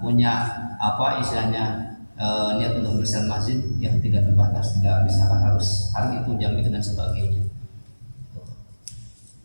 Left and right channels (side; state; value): both; inverted; correlation -1.00